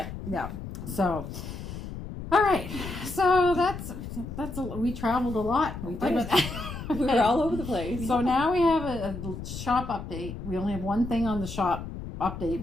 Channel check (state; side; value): noise; left; rumble, 9 dB below the sound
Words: Yeah. So. All right, so that's we traveled a lot. We did. We were all over the place. So now we have a shop update. We only have one thing on the shop